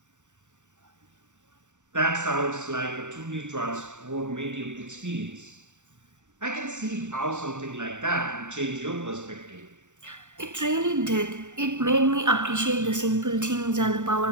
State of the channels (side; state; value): left; late; 0.85 ms